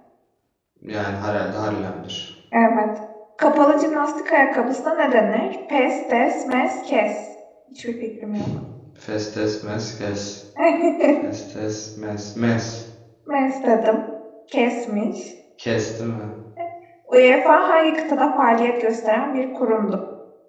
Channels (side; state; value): both; identical; correlation 1.00